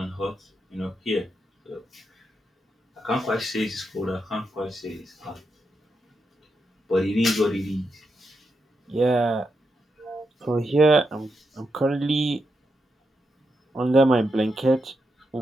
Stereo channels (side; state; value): both; normal; correlation 0.84